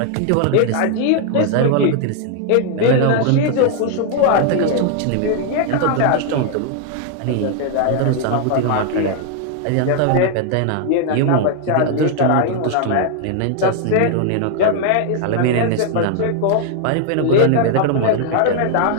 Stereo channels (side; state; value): both; different; correlation 0.00